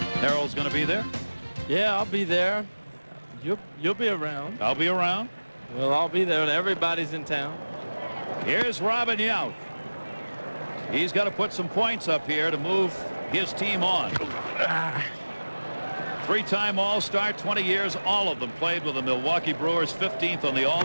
Harold's going to be there? Yeah, I'll be there. You'll be around. I'll be around. Well, I'll be there. Everybody's in town. Here's Robin Yount. He's got to put some points up here to move his team on. Three-time All-Star, 20 years, all of them played with the Milwaukee Brewers, 15th on the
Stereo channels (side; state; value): both; inverted; correlation -1.00